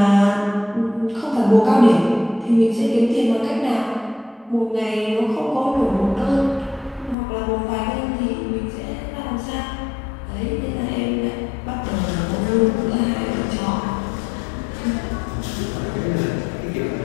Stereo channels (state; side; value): drops out; right; at 7.2 s